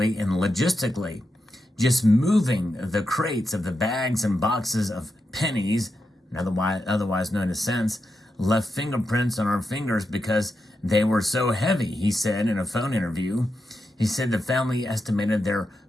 and logistically. Just moving the crates of the bags and boxes of pennies, otherwise known as cents, left fingerprints on our fingers because they were so heavy, he said in a phone interview. He said the family estimated their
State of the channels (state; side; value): normal; both; correlation 0.87